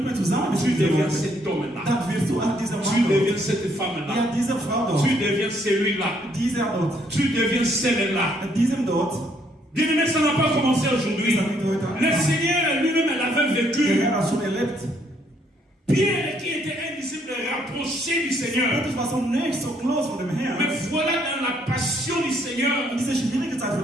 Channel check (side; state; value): both; normal; correlation 0.69